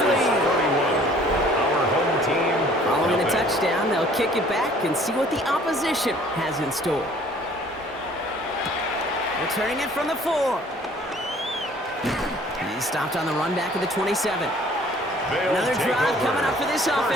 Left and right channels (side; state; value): both; normal; correlation 0.55